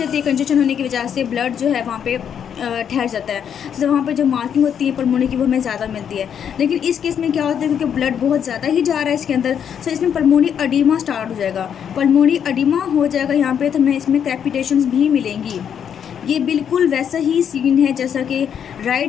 है। कंजेशन होने की वजह से ब्लड जो है वहाँ पे ठहर जाता है। तो वहाँ पे जो मार्किंग होती है पल्मोनरी की वो हमें ज़्यादा मिलती है। लेकिन इस केस में क्या होता है, क्योंकि ब्लड बहुत ज़्यादा ही जा रहा है इसके अंदर, सो इसमें पल्मोनरी अडीमा स्टार्ट हो जाएगा। पल्मोनरी अडीमा हो जाएगा यहाँ पे, तो हमें इसमें क्रेपिटेशंस भी मिलेंगी। ये बिल्कुल वैसा ही सीन है जैसा कि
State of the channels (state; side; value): quieter; right; 8.3 dB